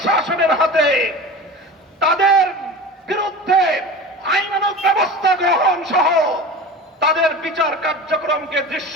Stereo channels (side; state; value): both; normal; correlation 0.33